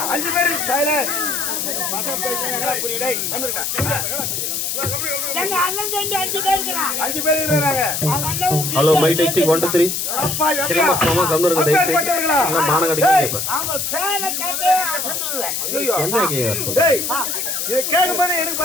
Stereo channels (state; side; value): noise; left; hiss, 2 dB below the sound